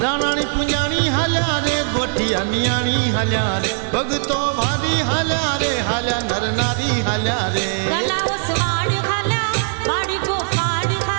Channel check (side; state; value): left; silent; 66 dB below the other